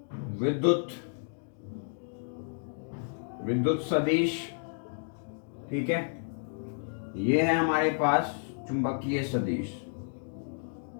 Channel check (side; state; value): right; silent; digital silence